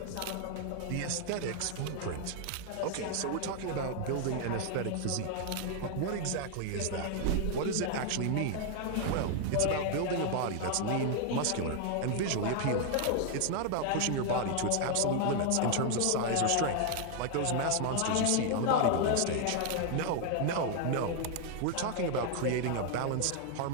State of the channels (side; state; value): both; different; correlation 0.00